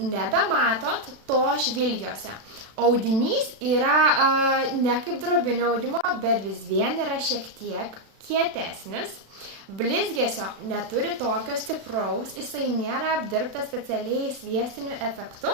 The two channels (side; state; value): left; late; 36 ms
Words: to žvilgiuose. Audinys yra ne kaip drobinio audimo, bet vis vien yra šiek tiek kietesnis. Blizgesio neturi tokio stipraus, jisai nėra apdirbtas specialiai sviestiniu efektu